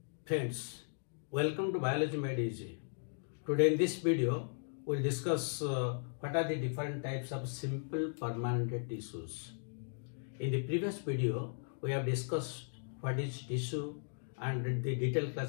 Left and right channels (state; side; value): silent; right; digital silence